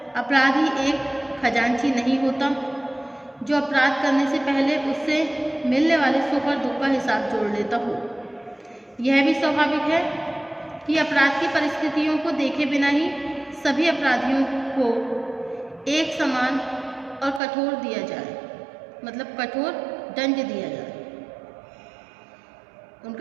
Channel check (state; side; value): drops out; left; at 17.4 s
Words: अपराधी एक खजांची नहीं होता जो अपराध करने से पहले उससे मिलने वाले सुख और दुख का हिसाब जोड़ लेता हो. यह भी स्वाभाविक है कि अपराध की परिस्थितियों को देखे बिना ही सभी अपराधियों को एक समान और कठोर दिया जाए, मतलब कठोर दंड दिया जाए.